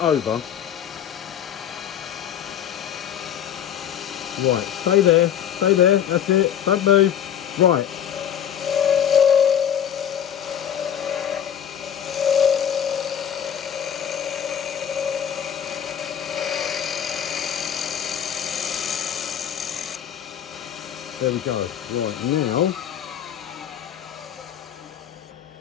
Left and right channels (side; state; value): right; quieter; 9.3 dB